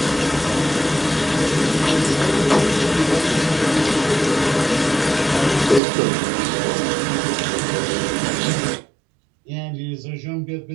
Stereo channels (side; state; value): left; drops out; at 5.8 s